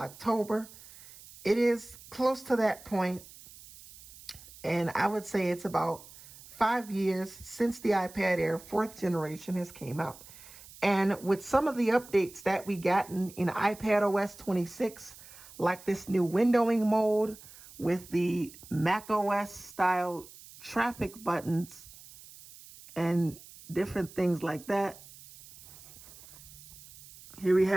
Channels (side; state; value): right; noise; hiss, 19 dB below the sound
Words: it is close to that point, and I would say it's about 5 years since the iPad Air 4th generation has came out. And with some of the updates that we gotten in iPad OS 26, like this new windowing mode with the Mac OS style traffic buttons and different things like that. Here we